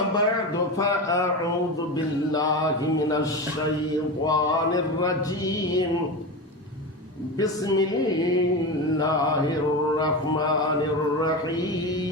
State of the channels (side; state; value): both; normal; correlation 0.22